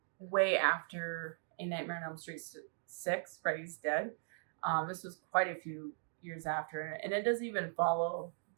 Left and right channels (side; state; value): left; silent; digital silence